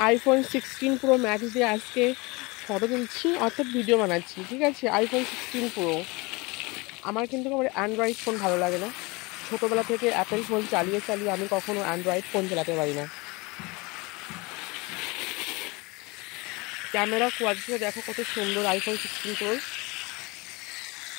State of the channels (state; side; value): quieter; right; 25.5 dB